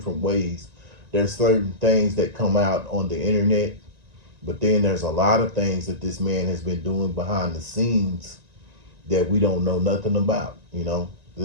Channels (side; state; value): left; late; 1.9 ms